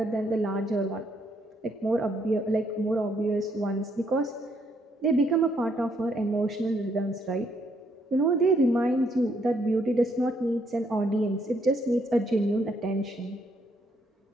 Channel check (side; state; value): both; normal; correlation 0.72